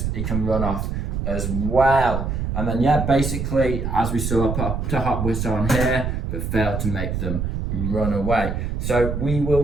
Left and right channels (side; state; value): right; noise; rumble, 2 dB below the sound